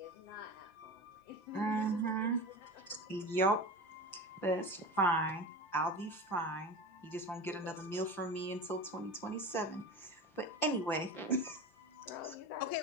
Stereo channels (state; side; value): late; right; 5.8 ms